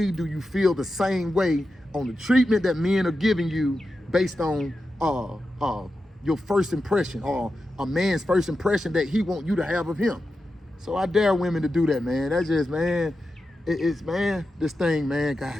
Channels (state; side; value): normal; both; correlation 0.90